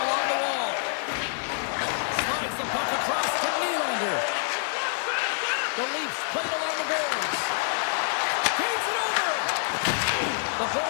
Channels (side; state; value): right; silent; 60 dB below the other